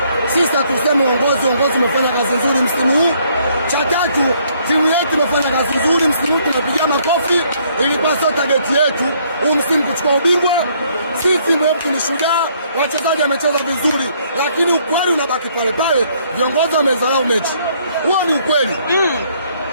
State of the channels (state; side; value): inverted; both; correlation -0.67